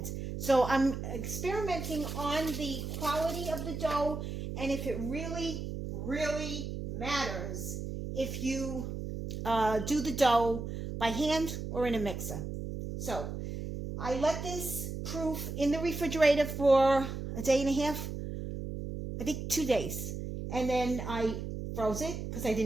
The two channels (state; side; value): noise; right; hum, 6 dB below the sound